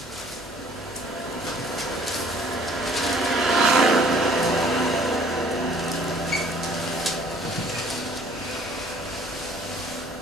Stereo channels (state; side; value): normal; both; correlation 0.56